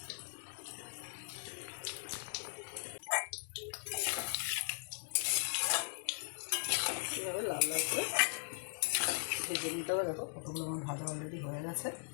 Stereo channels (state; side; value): silent; right; 52 dB below the other